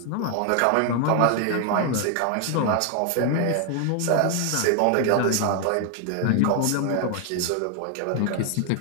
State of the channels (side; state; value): both; different; correlation 0.00